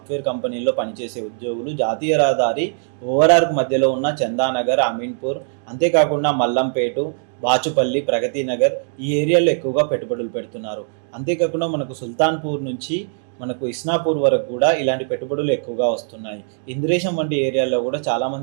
కంపెనీల్లో పనిచేసే ఉద్యోగులు జాతీయ రహదారి ఓఆర్ఆర్కు మధ్యలో ఉన్న చందానగర్, అమీన్పూర్, అంతేకాకుండా మల్లంపేట, బాచుపల్లి, ప్రగతి నగర్ ఈ ఏరియాలో ఎక్కువగా పెట్టుబడులు పెడుతున్నారు. అంతేకాకుండా మనకు సుల్తాన్పూర్ నుంచి మనకు ఇస్నాపూర్ వరకు కూడా ఇలాంటి పెట్టుబడులు ఎక్కువగా వస్తున్నాయి. ఇంద్రేశం వంటి ఏరియాలో కూడా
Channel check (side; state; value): left; silent; digital silence